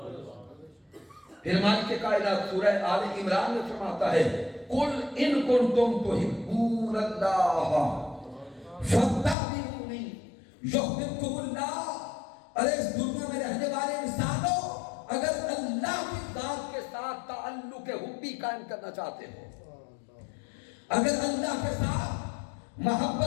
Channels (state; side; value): drops out; right; at 9.3 s